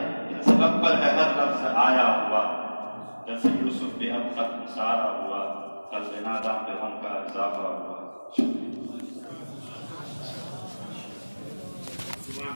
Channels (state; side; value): inverted; both; correlation -1.00